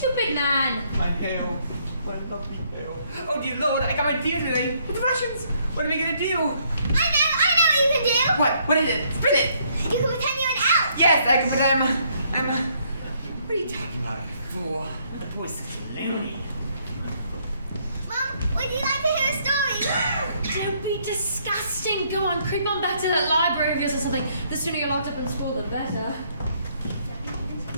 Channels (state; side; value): inverted; both; correlation -0.69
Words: man. My hair. My lovely hair. Oh dear lord, I got my deal today with the Russians. What am I gonna do? I know what you can do. What is it? Spin it! You can pretend you're an elf. Yes, I can put what are you talking about, fool? The boy's such a loony. Mom, would you like to hear a story? Don't be disgusting. Go on, creep on back to that library of yours or something. The sooner you're locked up in school, the better.